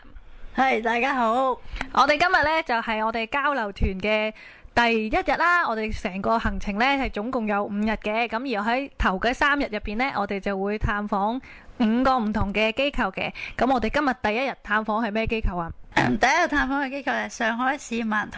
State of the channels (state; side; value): identical; both; correlation 1.00